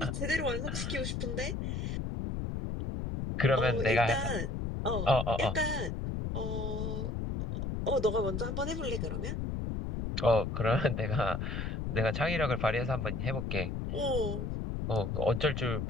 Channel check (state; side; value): noise; left; rumble, 2 dB below the sound